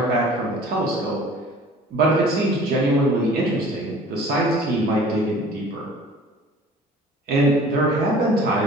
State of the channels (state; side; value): normal; both; correlation 0.48